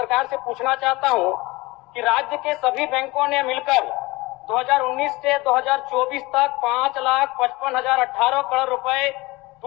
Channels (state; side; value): quieter; right; 22.1 dB